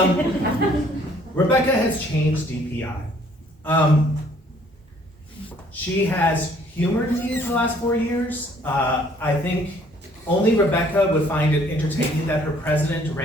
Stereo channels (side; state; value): both; normal; correlation 0.60